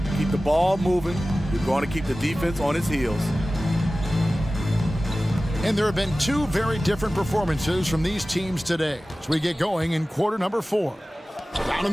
Keep the ball moving. You're going to keep the defense on its heels. And there have been two very different performances from these teams today as we get going in quarter number 4. Down in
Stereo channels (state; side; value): normal; both; correlation 0.96